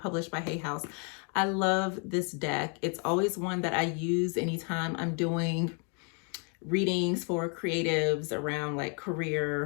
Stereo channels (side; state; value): right; quieter; 38.6 dB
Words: by Hay House. I love this deck. It's always one that I use anytime I'm doing readings for creatives around like